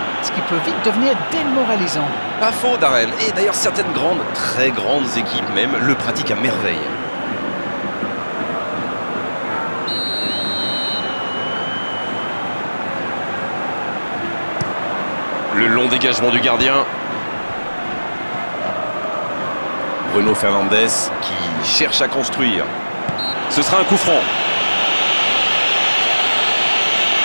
ce qui peut vite devenir démoralisant. Pas faux, Darren. Et d'ailleurs, certaines grandes, très grandes équipes même, le pratiquent à merveille. Le long dégagement du gardien. Bruno Fernandes qui cherche à construire. Ce sera un coup franc.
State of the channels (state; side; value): inverted; both; correlation -1.00